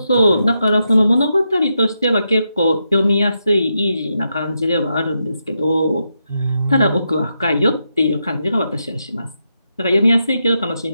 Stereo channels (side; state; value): both; inverted; correlation -0.84